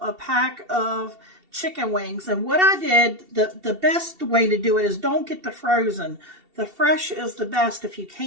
pack of chicken wings. And what I did, the best way to do it is don't get the frozen. The fresh is the best if you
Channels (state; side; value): late; left; 2.7 ms